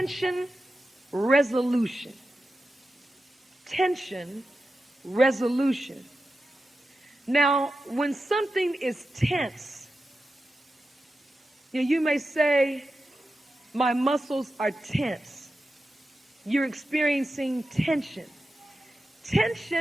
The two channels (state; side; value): normal; both; correlation 0.91